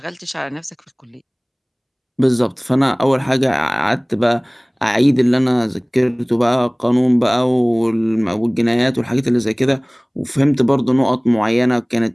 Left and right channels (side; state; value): both; identical; correlation 1.00